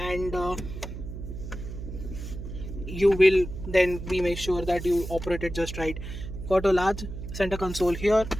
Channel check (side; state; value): right; noise; hum, 9 dB below the sound